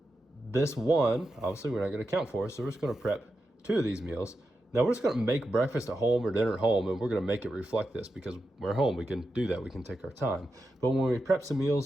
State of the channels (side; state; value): both; normal; correlation 0.89